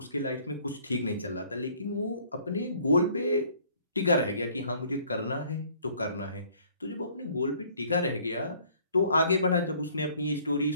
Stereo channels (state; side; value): inverted; both; correlation -0.58